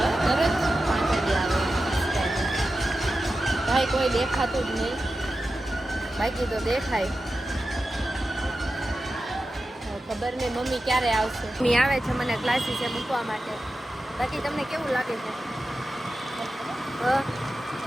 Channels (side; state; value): both; normal; correlation 0.92